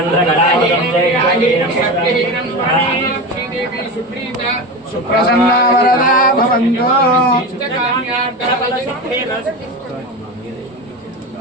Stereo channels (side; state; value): both; normal; correlation 0.24